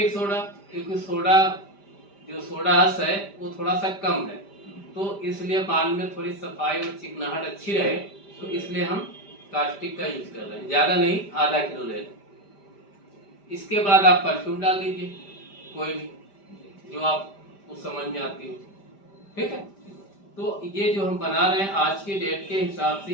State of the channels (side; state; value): right; late; 5.1 ms